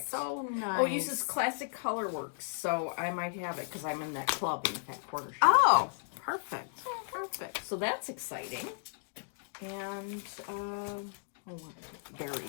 so nice. Oh, it uses Classic Colorworks, so I might have it because I'm in that club in that quarter shop. Oh, perfect. Perfect. So that's exciting. And,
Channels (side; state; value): right; silent; digital silence